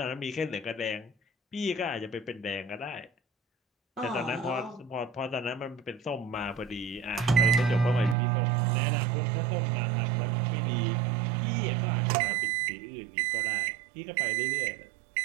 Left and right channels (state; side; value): drops out; left; at 8.2 s